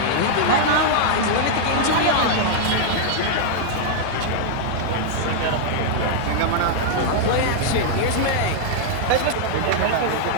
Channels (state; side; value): different; both; correlation -0.01